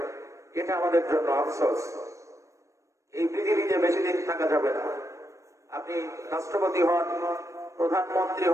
এটা আমাদের জন্য আফসোস। এই পৃথিবীতে বেশি দিন থাকা যাবে না। আপনি রাষ্ট্রপতি হন, প্রধানমন্ত্রী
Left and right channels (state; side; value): late; left; 0.15 ms